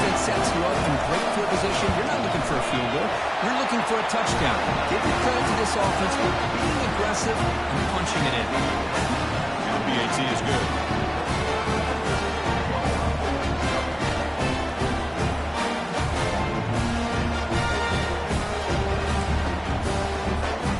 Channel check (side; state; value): both; identical; correlation 1.00